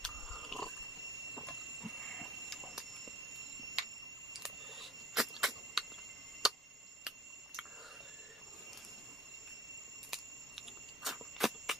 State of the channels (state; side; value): normal; both; correlation 0.50